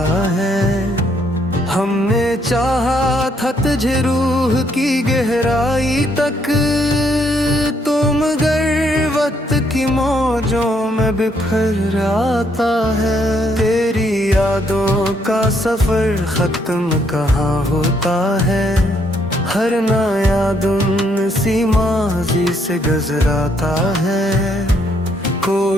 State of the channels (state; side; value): normal; both; correlation 0.71